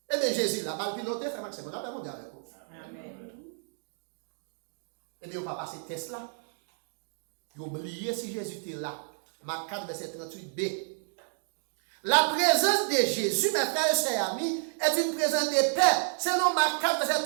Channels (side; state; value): left; silent; digital silence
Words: Eh bien Jésus là mal piloté fait maximum on a pas mondial avec vous. Amen. Eh bien, on va passer test là. Vous oubliez si Jésus était là. Marc 4, verset 38b. La présence de Jésus, mes frères et sœurs amis, est une présence de paix. Selon Marc 4, verset